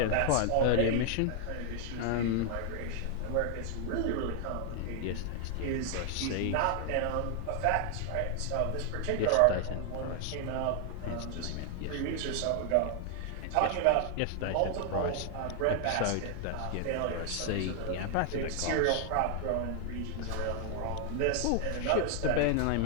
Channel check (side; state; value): both; different; correlation 0.00